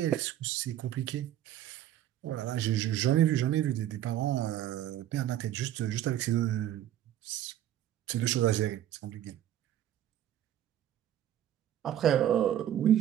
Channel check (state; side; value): quieter; left; 11.9 dB